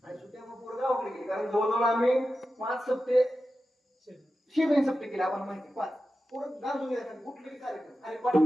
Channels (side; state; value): both; normal; correlation 0.92